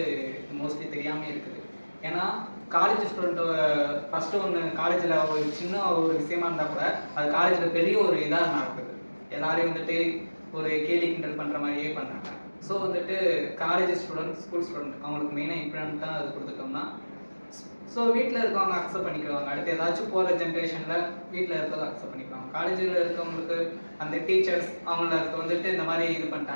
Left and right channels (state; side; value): inverted; both; correlation -1.00